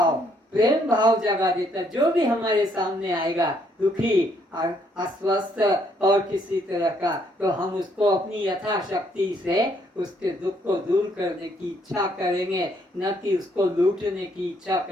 प्रेम भाव जगा देता। जो भी हमारे सामने आएगा दुखी, अस्वस्थ और किसी तरह का, तो हम उसको अपनी यथाशक्ति से उसके दुख को दूर करने की इच्छा करेंगे, न कि उसको लूटने की इच्छा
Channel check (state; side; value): normal; both; correlation 0.69